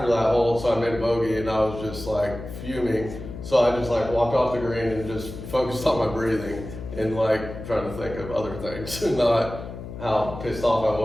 that hole, so I made a bogey and I was just like fuming. So I just like walked off the green and just focused on my breathing and like trying to think of other things and not how pissed off I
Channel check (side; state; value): left; noise; hum, 11 dB below the sound